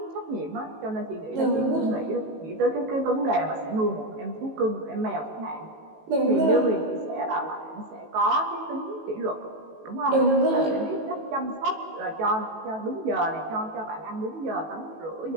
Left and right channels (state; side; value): late; left; 18 ms